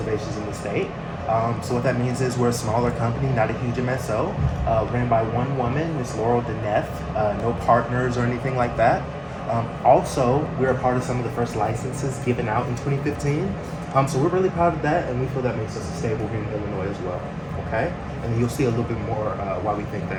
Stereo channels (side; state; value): both; identical; correlation 1.00